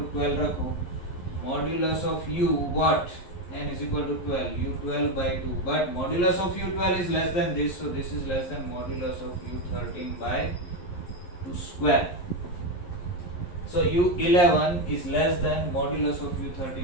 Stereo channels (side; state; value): right; late; 11 ms